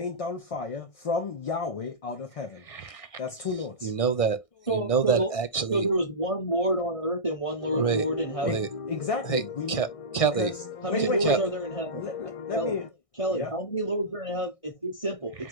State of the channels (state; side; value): late; right; 1.6 ms